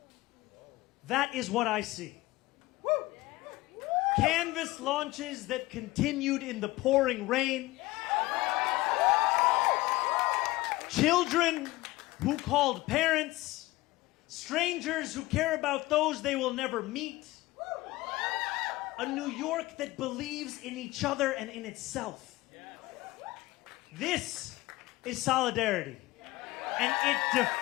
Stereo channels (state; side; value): quieter; right; 19.3 dB